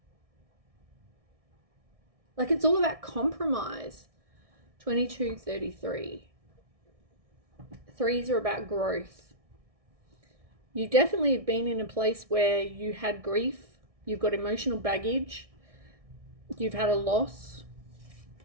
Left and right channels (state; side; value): late; left; 1.6 ms